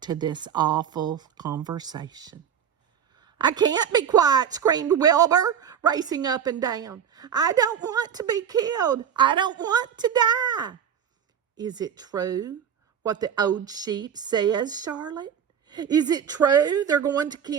to this awful conversation. I can't be quiet, screamed Wilbur, racing up and down. I don't want to be killed. I don't want to die. Is it true what the old sheep says, Charlotte? Is it true they're going to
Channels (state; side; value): quieter; left; 8.2 dB